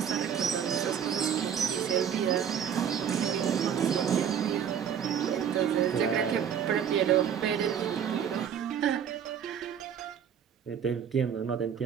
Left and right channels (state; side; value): quieter; left; 8.3 dB